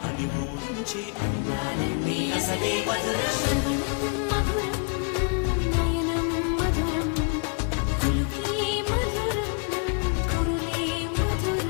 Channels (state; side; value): quieter; right; 35.6 dB